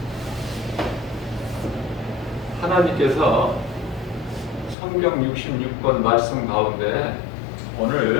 하나님께서 성경 66권 말씀 가운데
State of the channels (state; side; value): drops out; right; at 4.8 s